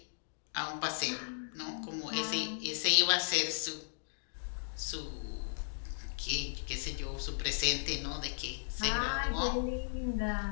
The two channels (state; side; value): silent; right; digital silence